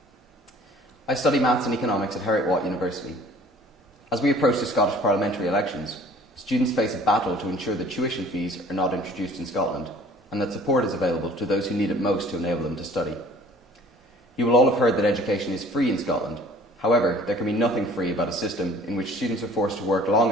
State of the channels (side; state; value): both; normal; correlation 0.51